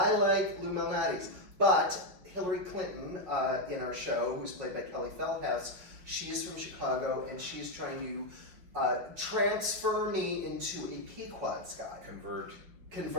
like Lou Malnati's, but Hillary Clinton in our show, who's played by Kelly Feldhouse, she's from Chicago, and she's trying to transfer me into a Pequod's guy. Convert,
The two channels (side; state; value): left; late; 5.5 ms